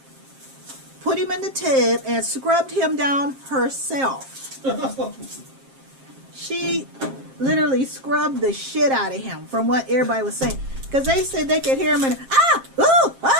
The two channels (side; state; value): left; late; 7.5 ms